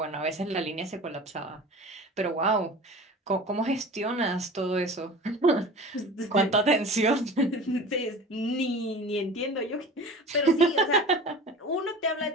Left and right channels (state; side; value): normal; both; correlation 0.38